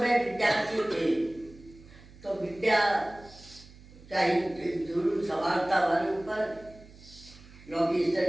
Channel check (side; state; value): right; noise; hum, 21 dB below the sound